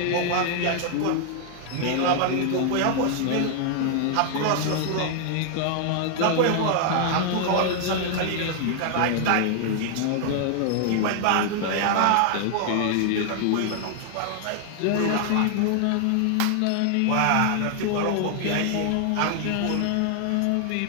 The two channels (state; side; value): different; both; correlation 0.00